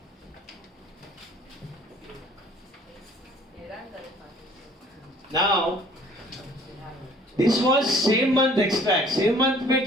Now this was same month extract. Same month में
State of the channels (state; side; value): normal; both; correlation 0.55